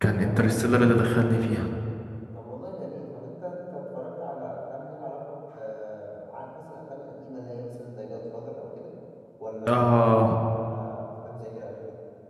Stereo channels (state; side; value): identical; both; correlation 1.00